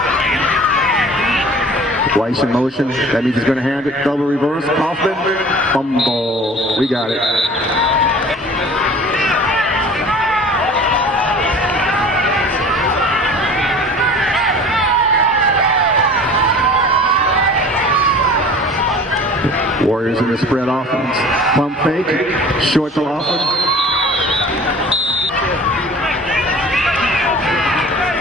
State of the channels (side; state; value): both; normal; correlation 0.44